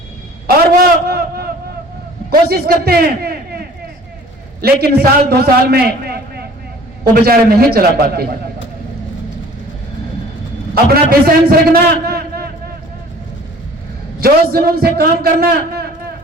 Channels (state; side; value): normal; both; correlation 0.49